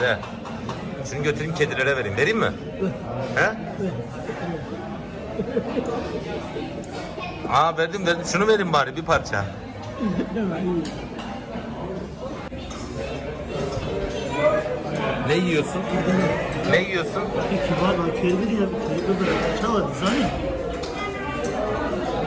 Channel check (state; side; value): identical; both; correlation 1.00